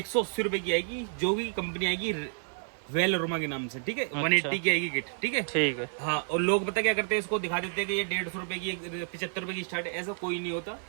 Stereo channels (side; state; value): left; silent; 58 dB below the other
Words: रुपए की आएगी, जो भी कंपनी आएगी वेल अरोमा के नाम से, ठीक है? 180 की आएगी किट, ठीक है? ठीक है। हाँ। और लोग पता क्या करते हैं, इसको दिखा देते हैं कि ये 150 रुपए की, 75 रुपए की स्टार्ट है। ऐसा कोई नहीं होता।